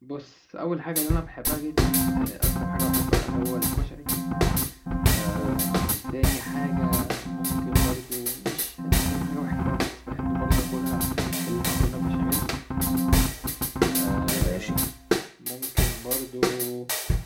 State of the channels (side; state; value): both; identical; correlation 1.00